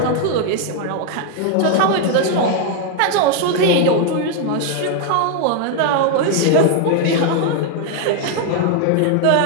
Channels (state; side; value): different; both; correlation 0.00